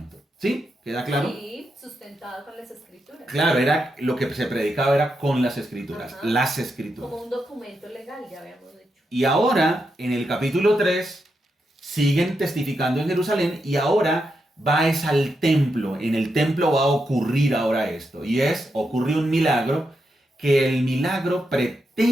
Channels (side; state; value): both; normal; correlation 0.84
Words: ¿Sí? ¿Queda claro? Sí, sustentado con las escrituras. Claro, era lo que se predicaba era con las escrituras, Ajá. las escrituras. Como un documento legal, ya habíamos dicho. Y ahora, en el capítulo 3, siguen testificando en Jerusalén y ahora es al templo. En el templo va a ocurrir ahora esto. Y ocurre un milagro, que el milagro